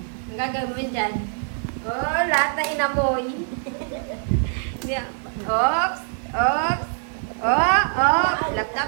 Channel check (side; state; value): left; silent; 61 dB below the other